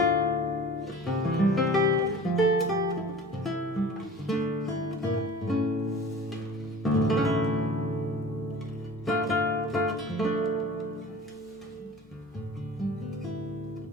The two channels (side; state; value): both; normal; correlation 0.41